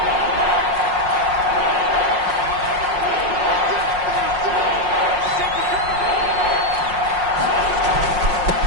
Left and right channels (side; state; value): left; late; 5.5 ms